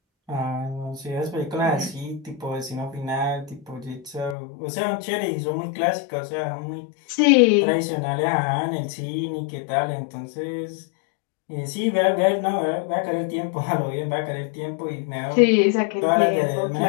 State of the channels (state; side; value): drops out; right; at 4.4 s